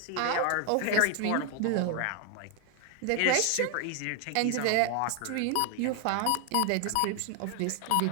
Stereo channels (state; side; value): different; both; correlation 0.00